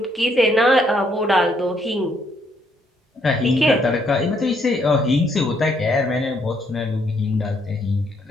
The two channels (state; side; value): normal; both; correlation 0.71